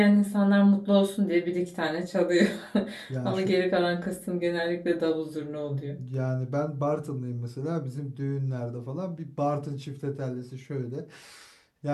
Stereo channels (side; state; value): both; identical; correlation 1.00